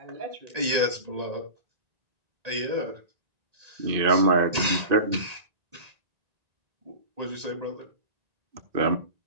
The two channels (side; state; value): left; late; 1.8 ms